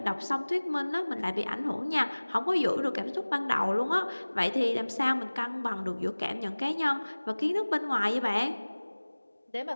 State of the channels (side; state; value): both; inverted; correlation -1.00